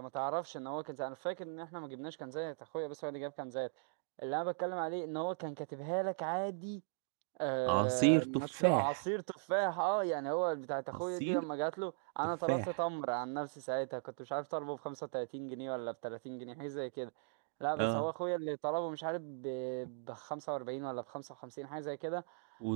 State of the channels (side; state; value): left; silent; digital silence